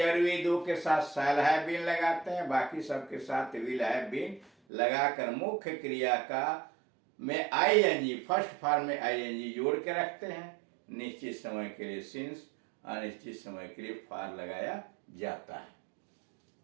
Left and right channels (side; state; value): left; drops out; at 4.5 s